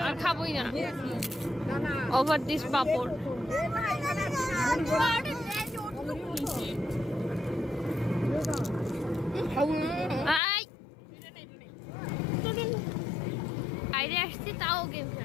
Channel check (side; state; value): right; drops out; at 10.4 s